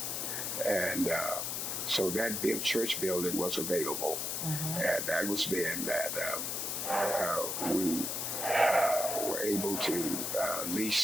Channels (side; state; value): left; noise; hiss, 2 dB below the sound